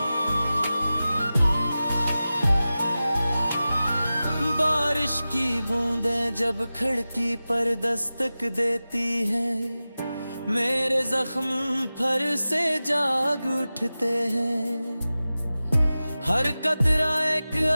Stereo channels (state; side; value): inverted; both; correlation -0.96